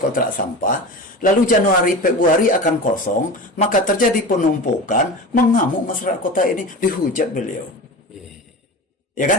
sampah, lalu Januari, Februari akan kosong, maka terjadi penumpukan, mengamuk masyarakat kota ini, dihujat beliau. Ya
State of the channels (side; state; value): both; normal; correlation 0.30